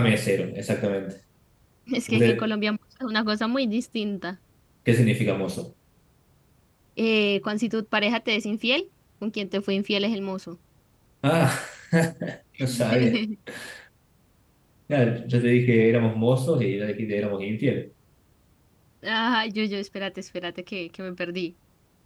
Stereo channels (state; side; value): identical; both; correlation 1.00